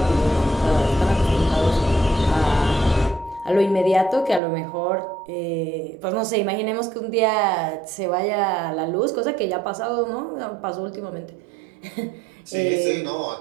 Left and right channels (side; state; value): left; drops out; at 4.4 s